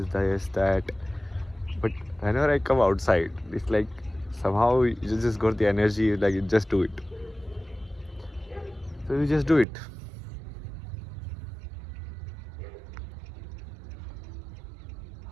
This, that. But whenever I come outside, it's like somehow you just got the energy, like you just do it. So you just do it.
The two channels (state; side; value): drops out; left; at 9.7 s